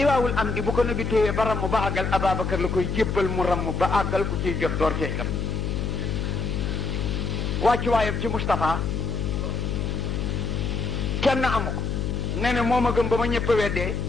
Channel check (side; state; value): left; noise; hum, 1 dB below the sound